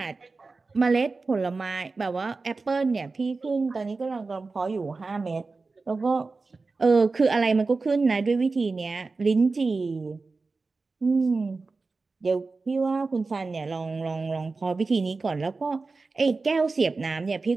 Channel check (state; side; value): quieter; left; 3.9 dB